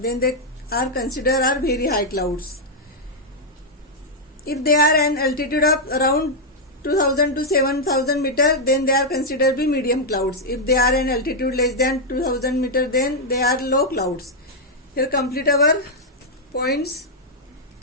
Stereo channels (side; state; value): both; normal; correlation -0.03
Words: they are considered are very high clouds. If they are an altitude of around 2,000 to 7,000 meter, then they are considered to be medium clouds. If they are an altitude less than 2,000 meter, then they are low clouds. Here complete our points,